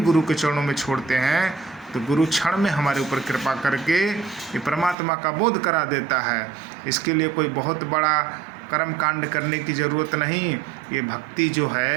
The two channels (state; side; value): drops out; left; at 5.0 s